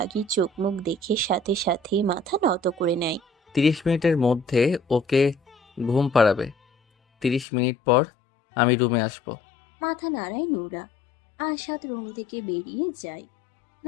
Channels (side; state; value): right; drops out; at 7.5 s